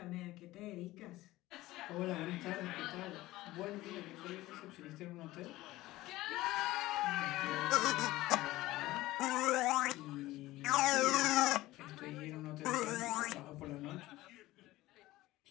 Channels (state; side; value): quieter; right; 17.5 dB